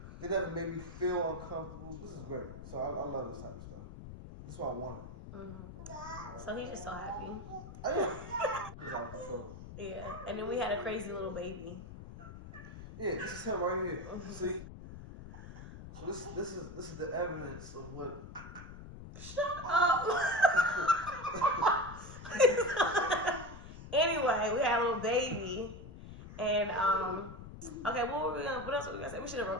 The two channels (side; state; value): left; noise; rumble, 13 dB below the sound